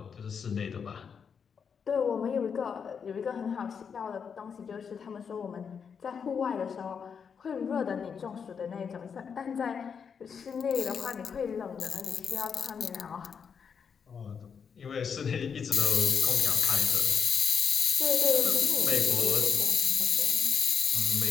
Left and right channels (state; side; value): quieter; right; 6.6 dB